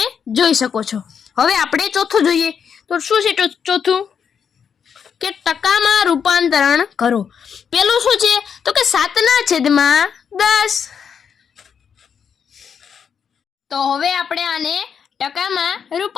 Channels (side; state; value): right; quieter; 7.1 dB